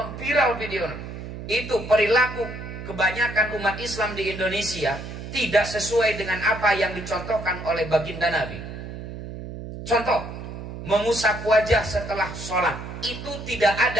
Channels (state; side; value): noise; right; hum, 10 dB below the sound